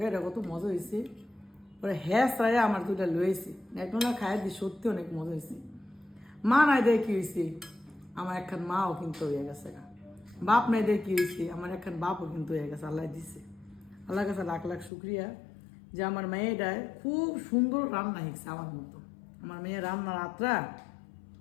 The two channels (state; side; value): drops out; right; at 14.9 s